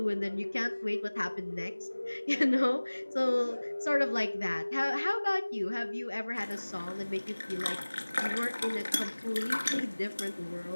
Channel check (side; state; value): both; inverted; correlation -1.00